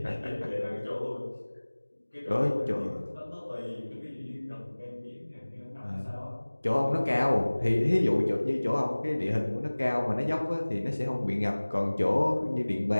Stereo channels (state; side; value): inverted; both; correlation -1.00